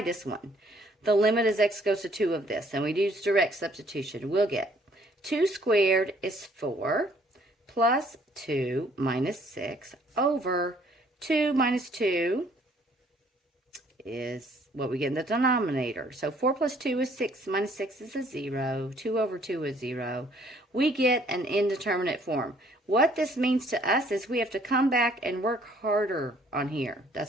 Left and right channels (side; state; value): both; normal; correlation 0.61